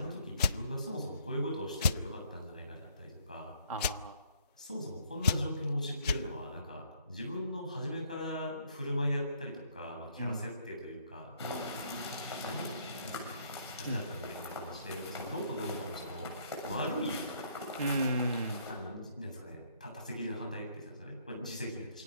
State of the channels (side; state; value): both; inverted; correlation -0.66